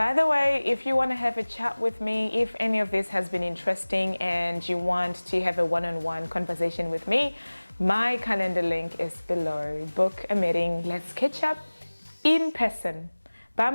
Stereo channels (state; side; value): inverted; both; correlation -1.00